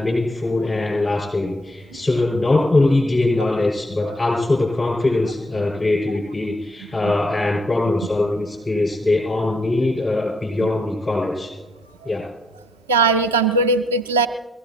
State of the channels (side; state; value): both; normal; correlation 0.73